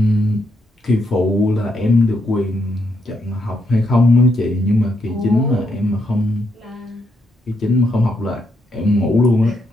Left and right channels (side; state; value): both; normal; correlation 0.78